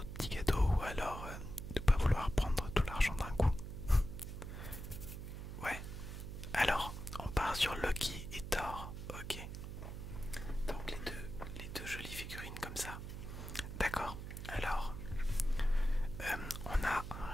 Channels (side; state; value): right; noise; hum, 8 dB below the sound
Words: petits cadeaux ou alors de ne pas vouloir prendre tout l'argent d'un coup. Ouais, alors on part sur Loki et Thor. Ok, donc les deux jolies figurines comme ça. D'accord, alors on a un